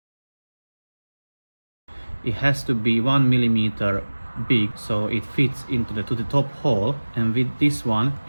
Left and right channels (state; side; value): inverted; both; correlation -1.00